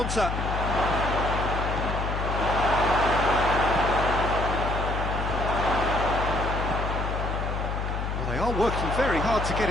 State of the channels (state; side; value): noise; left; hum, 2 dB below the sound